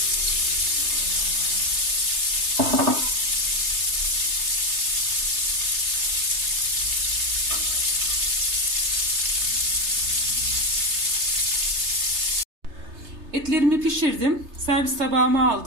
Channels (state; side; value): late; left; 3.3 ms